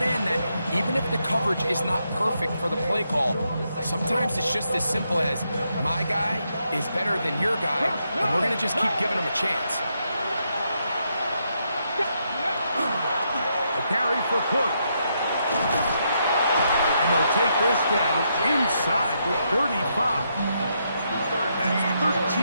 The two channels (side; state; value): both; inverted; correlation -0.79